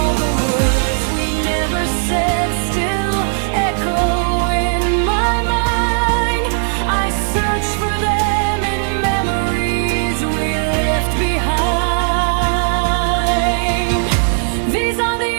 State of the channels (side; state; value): left; silent; digital silence